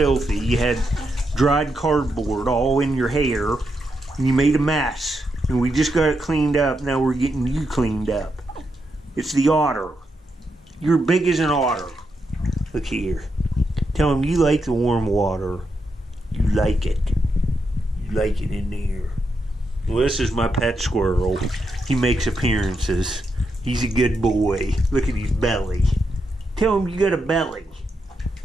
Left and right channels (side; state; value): both; normal; correlation 0.83